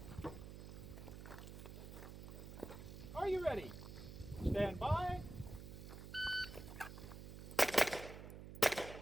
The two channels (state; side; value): noise; right; hum, 11 dB below the sound